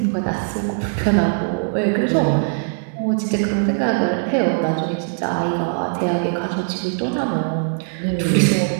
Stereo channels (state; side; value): silent; left; digital silence